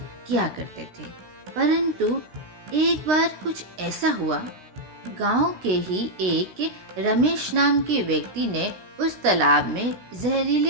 किया करते थे। परंतु एक बार कुछ ऐसा हुआ, गांव के ही एक रमेश नाम के व्यक्ति ने उस तालाब में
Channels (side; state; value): left; late; 16 ms